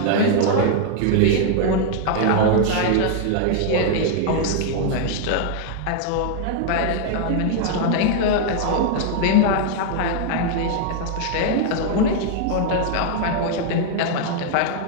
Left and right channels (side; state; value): both; different; correlation 0.00